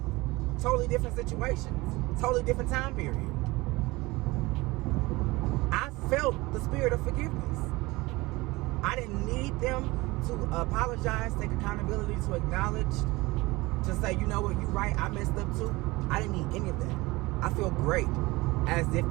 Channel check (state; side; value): quieter; left; 21.8 dB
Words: totally different situations, totally different time period, I felt the spirit of forgiveness. I didn't need them to apologize, take accountability, to acknowledge, to say, you know what, you're right, I messed up too. I didn't need any of that. I feel great, as if